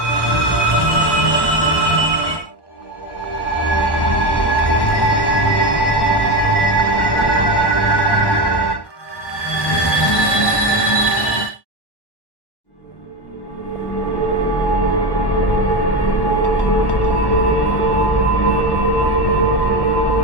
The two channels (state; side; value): late; right; 1.1 ms